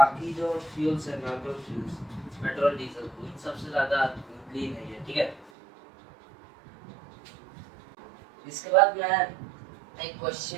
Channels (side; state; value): left; drops out; at 5.5 s